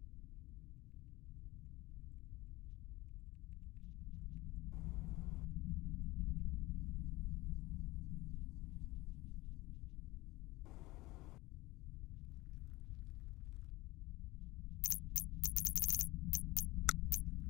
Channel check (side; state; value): right; quieter; 19.9 dB